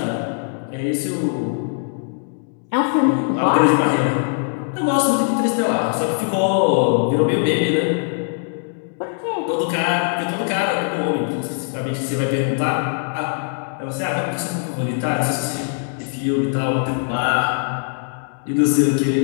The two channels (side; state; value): right; silent; 65 dB below the other